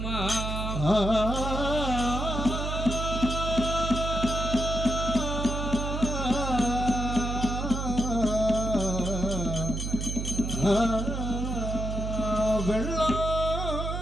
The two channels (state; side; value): noise; right; hum, 3 dB below the sound